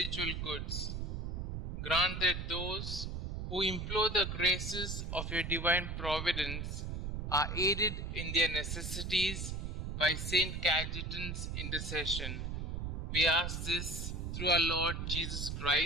goods. Grant that those who implore the graces of your divine providence are aided in their necessities by Saint Cajetan's intercession. We ask this through our Lord Jesus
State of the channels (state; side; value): noise; right; rumble, 3 dB below the sound